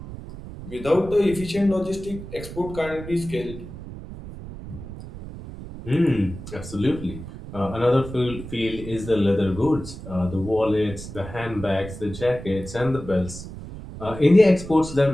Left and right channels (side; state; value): right; noise; rumble, 12 dB below the sound